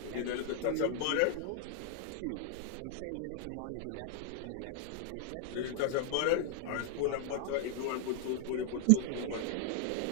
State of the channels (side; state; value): both; different; correlation 0.00